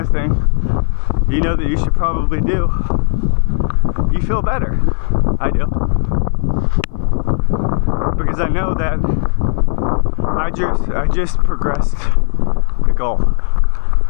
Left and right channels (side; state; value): right; silent; 60 dB below the other